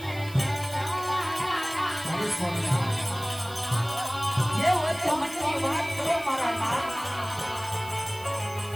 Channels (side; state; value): right; noise; hiss, 18 dB below the sound